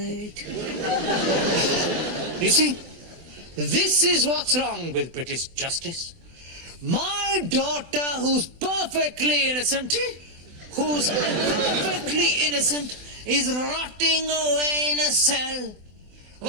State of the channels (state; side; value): late; left; 24 ms